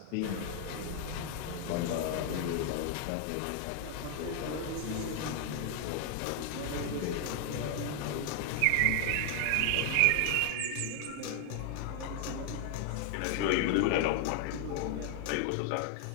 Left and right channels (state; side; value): different; both; correlation 0.00